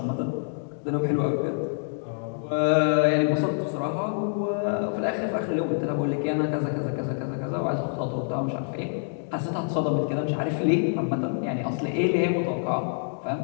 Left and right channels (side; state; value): right; silent; digital silence